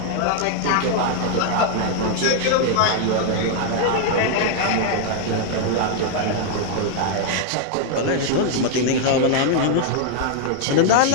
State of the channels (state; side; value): different; both; correlation 0.00